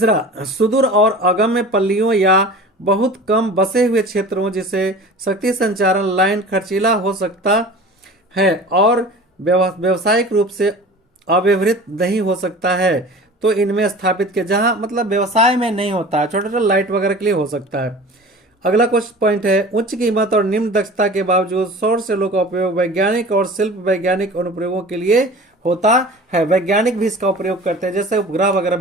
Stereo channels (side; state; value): both; normal; correlation 0.39